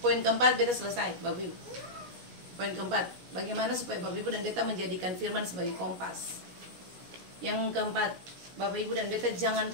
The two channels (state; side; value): late; left; 17 ms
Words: poin keempat beta selesai Bapak Ibu. Poin keempat, bagaimana supaya Bapak Ibu dan beta menjadikan firman sebagai kompas. Yang keempat, Bapak Ibu dan beta jangan